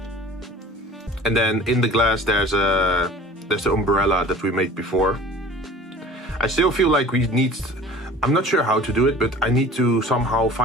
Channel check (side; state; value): both; normal; correlation 0.44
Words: And then in the glass, there's the umbrella that we made before. I still feel like we need. I'm not sure how to do it, but I need to somehow